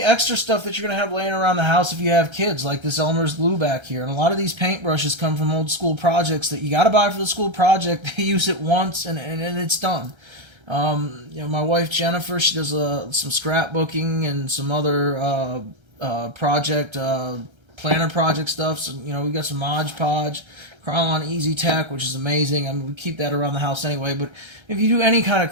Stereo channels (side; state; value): left; late; 1.3 ms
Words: extra stuff that you're going to have laying around the house if you have kids, like this Elmer's glue back here. And a lot of these paintbrushes come from old school projects that you got to buy for the school project. They use it once and it's done. My wife Jennifer, she does some scrapbooking and some other planner project stuff. So, we got some Mod Podge, Krylon Easy Tech, which is amazing. I mean, we keep that around the house anyway. But if you do any kind of